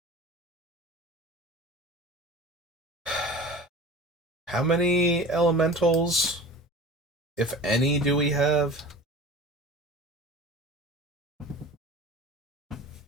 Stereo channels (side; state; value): both; normal; correlation 0.38